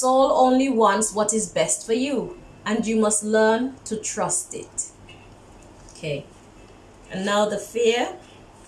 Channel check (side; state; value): both; identical; correlation 1.00